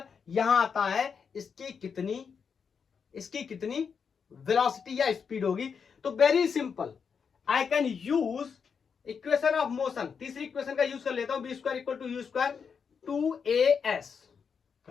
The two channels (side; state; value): right; quieter; 6.3 dB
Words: यहां आता है इसकी कितनी वेलोसिटी या स्पीड होगी। तो very simple, I can use equation of motion, तीसरी इक्वेशन का यूज कर लेता हूं, V square equal to U square 2as।